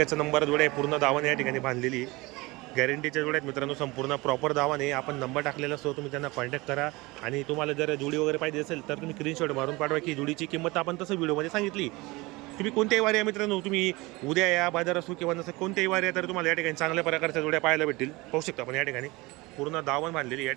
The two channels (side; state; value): left; quieter; 22.8 dB